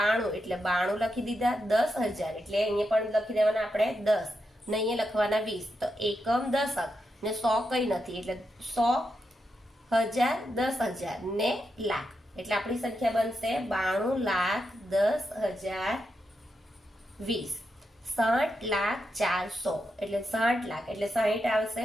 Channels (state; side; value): normal; both; correlation 0.85